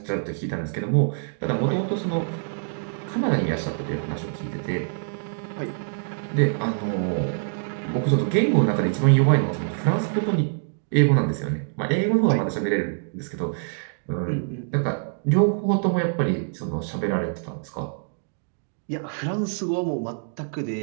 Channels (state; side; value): silent; left; digital silence